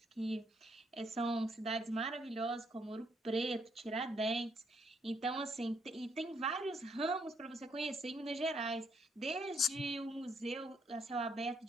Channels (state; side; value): normal; both; correlation 0.72